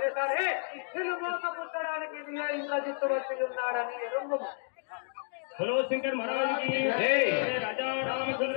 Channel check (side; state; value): right; silent; digital silence